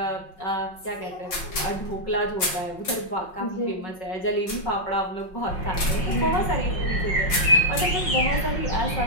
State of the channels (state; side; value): late; right; 5.7 ms